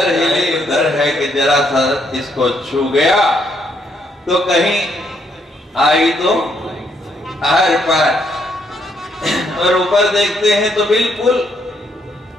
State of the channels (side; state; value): both; normal; correlation 0.73